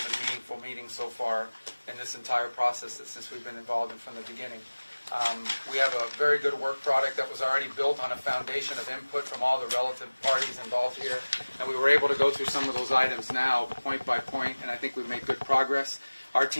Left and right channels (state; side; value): inverted; both; correlation -1.00